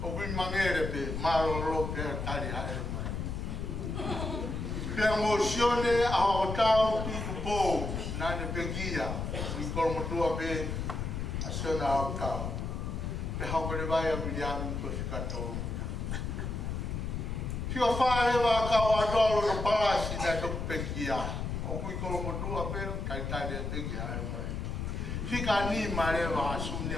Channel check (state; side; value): noise; left; rumble, 3 dB below the sound